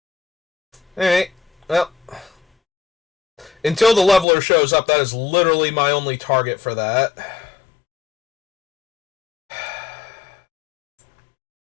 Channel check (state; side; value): drops out; right; at 4.2 s